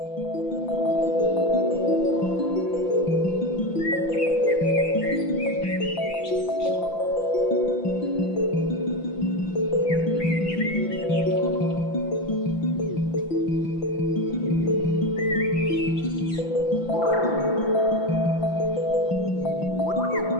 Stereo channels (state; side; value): late; right; 5.9 ms